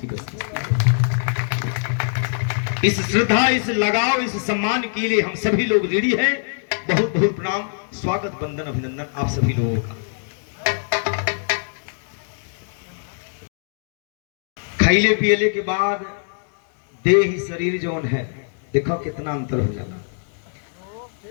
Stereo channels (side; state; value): right; silent; digital silence